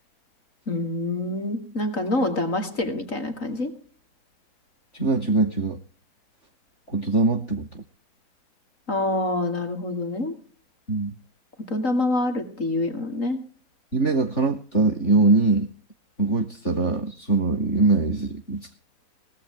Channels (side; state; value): right; late; 3.9 ms